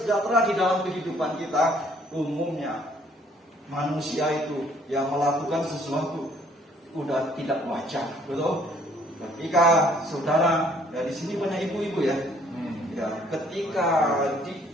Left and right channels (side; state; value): both; normal; correlation 0.62